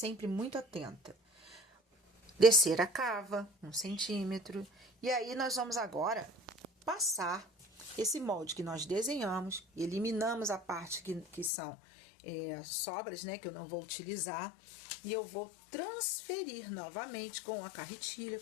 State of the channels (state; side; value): drops out; right; at 11.5 s